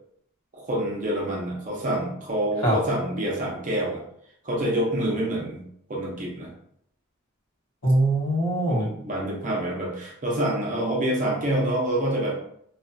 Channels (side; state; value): both; normal; correlation 0.38